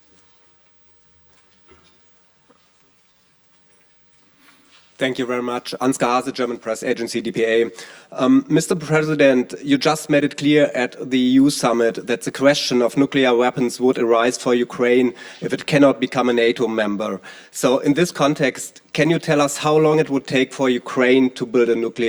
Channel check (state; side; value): identical; both; correlation 1.00